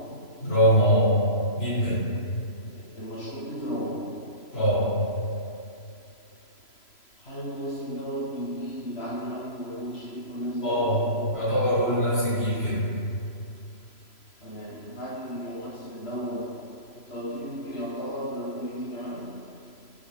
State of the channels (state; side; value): late; right; 3.0 ms